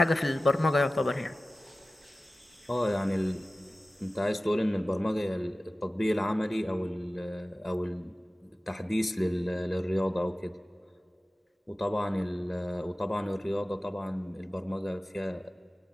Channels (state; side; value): normal; both; correlation 0.96